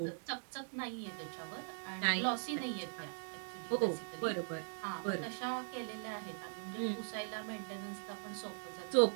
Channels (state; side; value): silent; left; digital silence